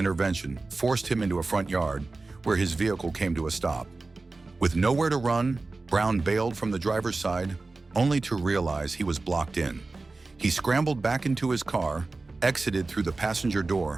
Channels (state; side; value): quieter; left; 3.5 dB